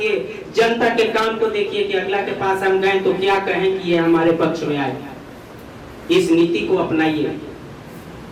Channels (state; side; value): identical; both; correlation 1.00